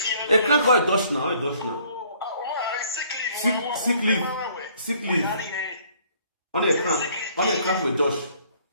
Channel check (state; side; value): inverted; both; correlation -0.60